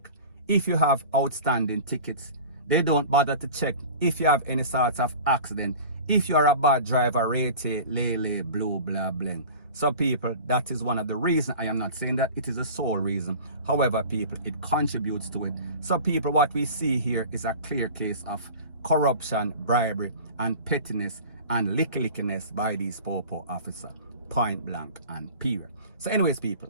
if you have outstanding tickets. They don't bother to check if you have any sorts of accident. If you are a bad driver, rate, lele, blue, blah, bling. So people, that is one of the reasons. I am not saying that it is the sole reason. However, people, it contributes to it. So people, what we see here is a clear case of corruption, bribery, and pettiness and lickiness by these popo officer, point blank and period. So anyways, people,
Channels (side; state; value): both; inverted; correlation -0.38